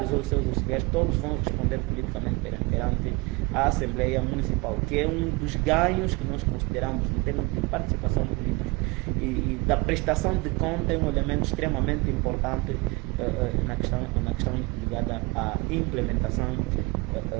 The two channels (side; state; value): left; quieter; 25.5 dB